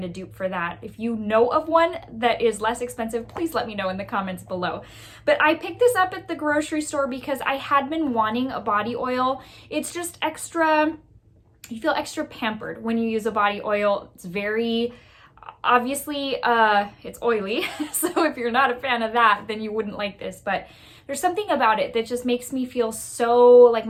a dupe for that. If you know of one that is less expensive, please let me know in the comments below. But I picked this up at the grocery store because I had been wanting a body oil. It's just extra, you feel extra pampered when you use a body oil. It's very, obviously, it's oily. So if you're not a fan of that, then you wouldn't like this. But there's something about it that just makes me feel so, like,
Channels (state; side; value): identical; both; correlation 1.00